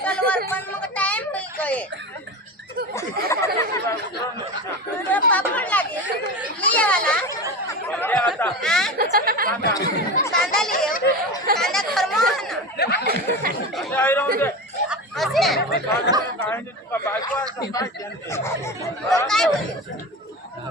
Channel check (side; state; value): both; normal; correlation 0.26